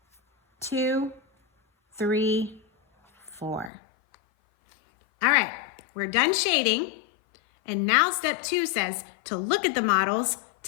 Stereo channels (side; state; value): right; drops out; at 3.7 s